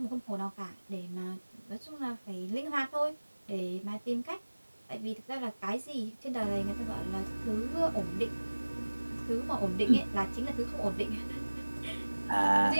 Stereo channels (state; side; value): inverted; both; correlation -1.00